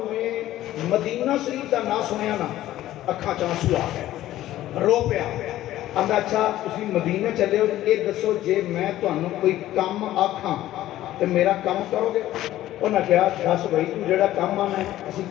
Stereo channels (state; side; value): quieter; right; 14.2 dB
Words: میں مدینہ شریف کا نام سنیا نا اکھاں چ آنسو آ گئے رو پیا ਆਂਦਾ ਅੱਛਾ ਤੁਸੀਂ ਮਦੀਨੇ ਚੱਲੇ ਹੋ, ਇਹ ਦੱਸੋ ਜੇ ਮੈਂ ਤੁਹਾਨੂੰ ਕੋਈ ਕੰਮ ਆਖਾਂ ਤੇ ਮੇਰਾ ਕੰਮ ਕਰੋਗੇ? ਉਹਨਾਂ ਕਿਹਾ ਦੱਸ ਬਈ ਤੂੰ ਜਿਹੜਾ ਕੰਮ ਆਣਾ ਅਸੀਂ